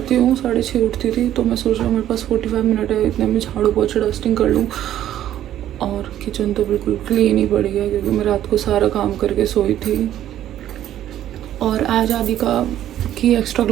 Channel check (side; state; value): left; quieter; 11.9 dB